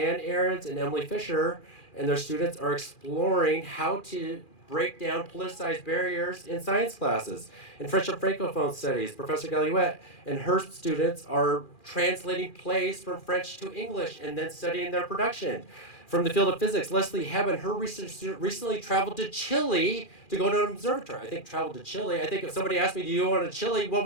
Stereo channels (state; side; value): late; right; 2.4 ms